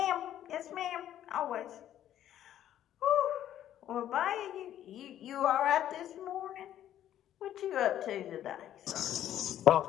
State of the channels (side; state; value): right; quieter; 11.5 dB